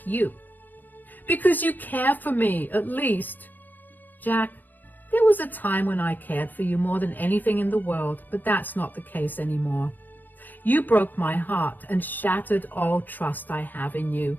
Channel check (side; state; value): right; late; 0.089 ms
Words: you? Because you care for me, at least. Jack, there was a time when I cared for you more than anything in the world, but that's not the case anymore. You broke my heart and shattered all trust I have in you.